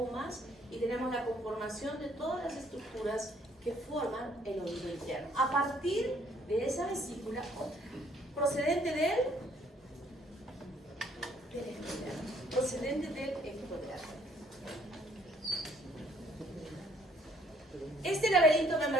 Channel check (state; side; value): normal; both; correlation 0.63